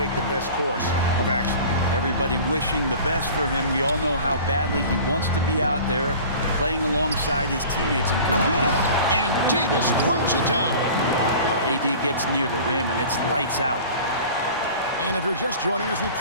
the best course of action. Everybody wishing the best for him. We all know how badly he wants to be out there playing alongside his teammates and competing. And Davis throws it down. AD gets near the rim, and it's lights out. And if you're just joining us, we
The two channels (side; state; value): both; inverted; correlation -0.41